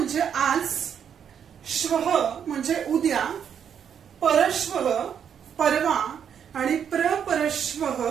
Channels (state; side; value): quieter; left; 8.1 dB